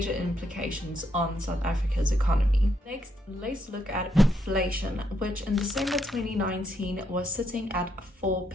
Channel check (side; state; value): both; normal; correlation 0.77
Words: implications on South Africa's economy. Next, let's look at inflation, which in December 2019 was sitting at